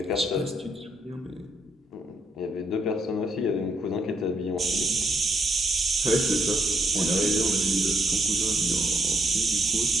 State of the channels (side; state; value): both; normal; correlation 0.74